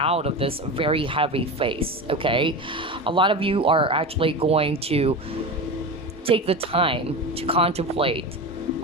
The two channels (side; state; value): both; normal; correlation 0.25